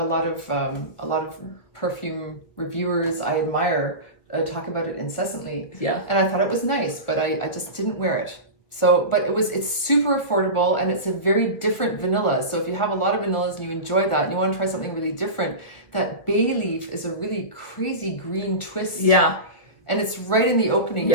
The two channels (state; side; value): late; right; 1.7 ms